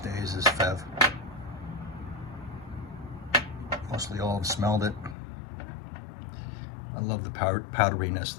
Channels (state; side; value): drops out; right; at 5.2 s